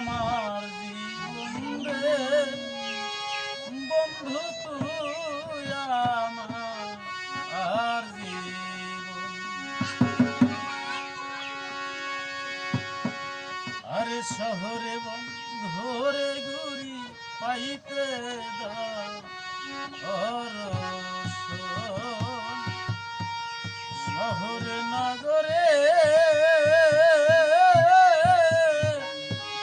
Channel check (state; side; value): identical; both; correlation 1.00